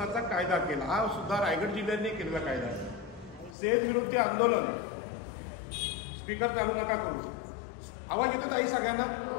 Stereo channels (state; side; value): drops out; right; at 3.6 s